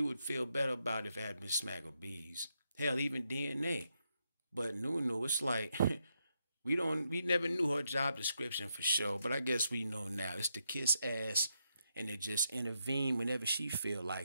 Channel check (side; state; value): both; inverted; correlation -0.81